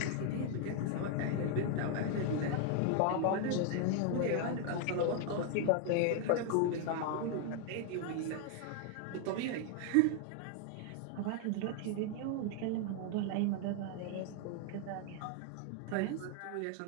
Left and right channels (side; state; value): both; different; correlation 0.01